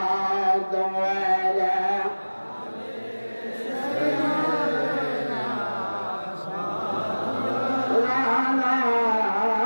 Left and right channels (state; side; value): inverted; both; correlation -1.00